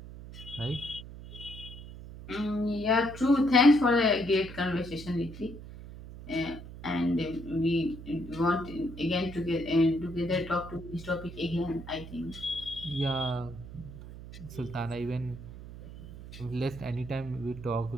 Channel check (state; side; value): noise; right; hum, 13 dB below the sound